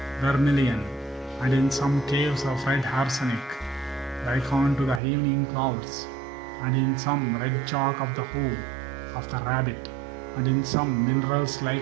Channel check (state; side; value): drops out; left; at 5.0 s